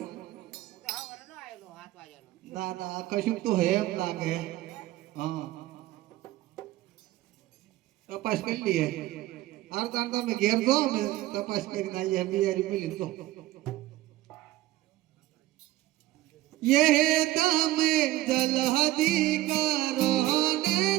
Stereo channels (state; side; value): quieter; left; 16.2 dB